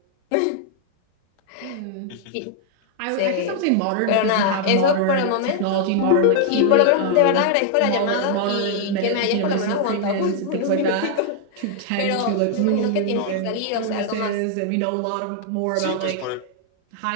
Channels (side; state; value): both; different; correlation 0.00